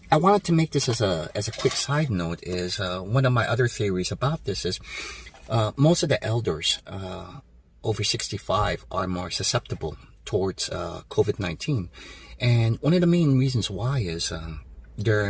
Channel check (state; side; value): identical; both; correlation 1.00